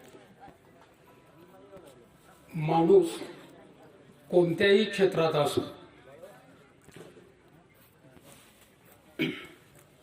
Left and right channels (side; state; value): both; identical; correlation 1.00